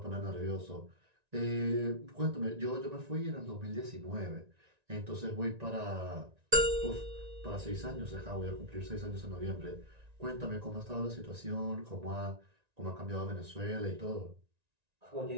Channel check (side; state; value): left; late; 1.9 ms